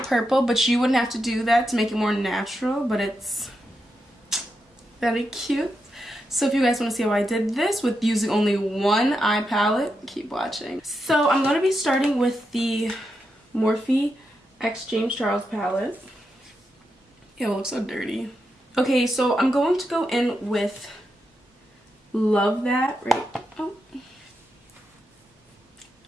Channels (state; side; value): normal; both; correlation 0.86